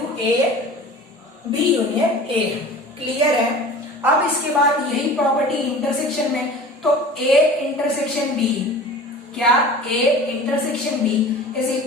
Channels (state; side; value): normal; both; correlation 0.40